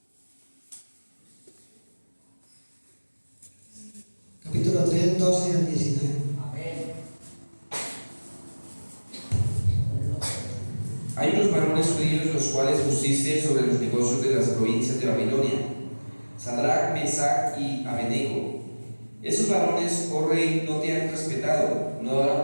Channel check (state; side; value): inverted; both; correlation -1.00